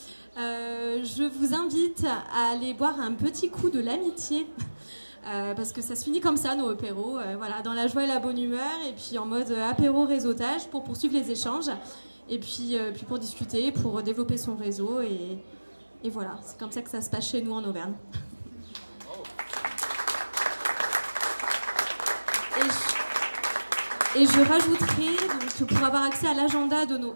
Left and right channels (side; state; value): both; inverted; correlation -1.00